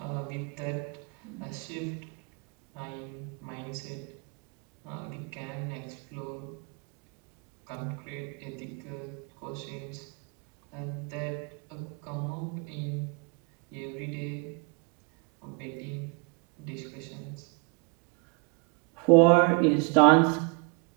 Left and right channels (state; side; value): quieter; left; 31.8 dB